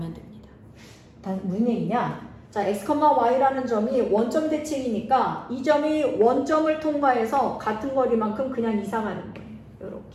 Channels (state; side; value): identical; both; correlation 1.00